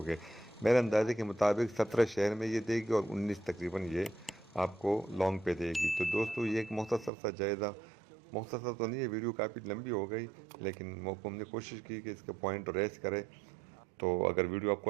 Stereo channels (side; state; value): left; drops out; at 7.1 s